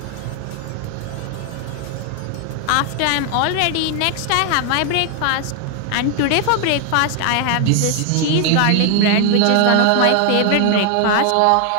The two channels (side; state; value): both; different; correlation 0.00